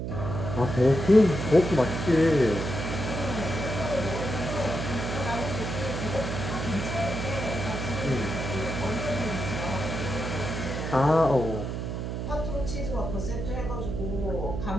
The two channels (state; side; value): noise; right; hum, 4 dB below the sound